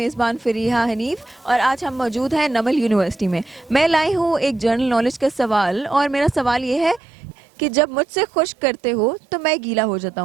फ़रीहा हनीफ और आज हम मौजूद हैं नमल यूनिवर्सिटी में। मैं लाई हूँ एक जनरल नॉलेज का सवाल और मेरा सवाल ये है कि जब मुझसे खुश करते हो तो मैं गीला हो जाता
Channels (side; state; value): left; drops out; at 7.0 s